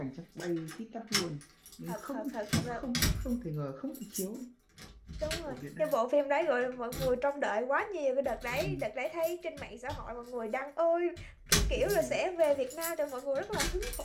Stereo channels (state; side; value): identical; both; correlation 1.00